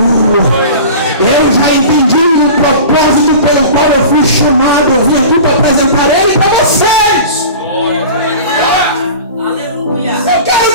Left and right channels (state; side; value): inverted; both; correlation -0.37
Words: Eu já entendi o propósito pelo qual eu fui chamado. Eu vim aqui para apresentar ele para vocês. Aleluia! Eu quero